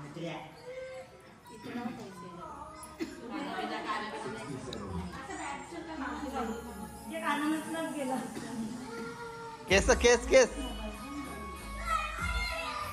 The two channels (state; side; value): identical; both; correlation 1.00